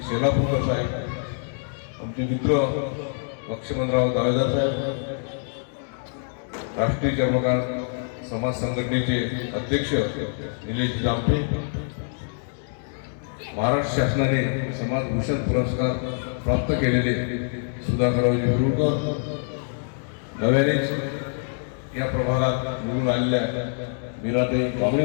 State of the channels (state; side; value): silent; right; digital silence